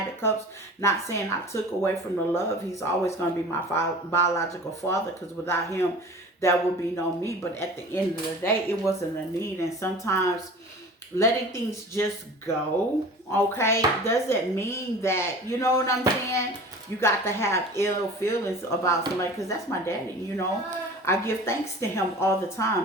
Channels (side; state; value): both; normal; correlation 0.40